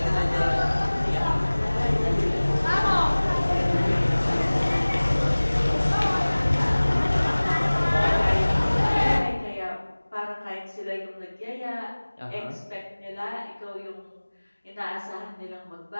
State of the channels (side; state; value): both; inverted; correlation -1.00